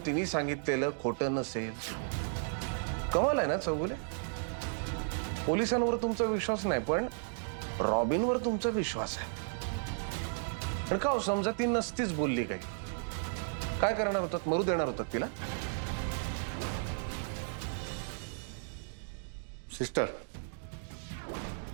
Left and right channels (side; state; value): left; silent; digital silence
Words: तिने सांगितलेलं खोटं नसेल? कमाल आहे ना चौगुले? पोलिसांवर तुमचा विश्वास नाही पण रॉबिनवर तुमचा विश्वास आहे. पण का हो, समजा ती नसतीच बोलली काही, काय करणार होतात? मरू देणार होतात तिला? सिस्टर,